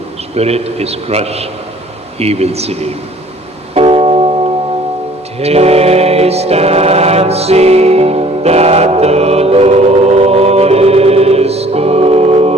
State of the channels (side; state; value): both; normal; correlation 0.54